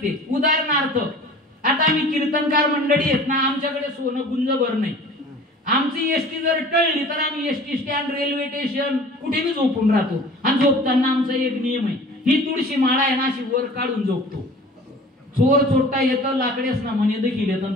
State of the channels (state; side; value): normal; both; correlation 0.45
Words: उदाहरणार्थ आता आम्ही कीर्तनकार मंडळी आहेत ना, आमच्याकडे सोनं गुंजभर नाही. आमची एसटी जर टळली तर आम्ही एसटी स्टँड, रेल्वे स्टेशन कुठेही झोपून राहतो. आणि झोपताना आमचा एक नियम आहे, ही तुळशी माळा आहे ना अशी वर काढून झोपतो. चोर चोरटा येतं लाकडेच ना म्हणे देखील येतं